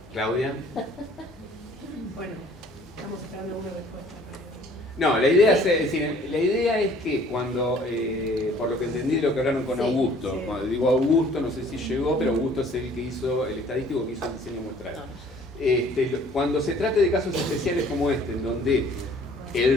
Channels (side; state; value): both; normal; correlation 0.55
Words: Claudia. Bueno, estamos esperando una respuesta. No, la idea, la idea es que cuando, por lo que entendí de lo que hablaron con Augusto, sí. Cuando digo Augusto, no sé si llegó, pero Augusto es el que hizo, el estadístico que hizo el diseño muestral. Cuando se trate de casos especiales como este, en donde